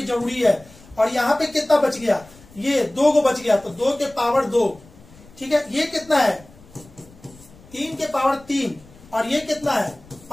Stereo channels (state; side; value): noise; left; rumble, 24 dB below the sound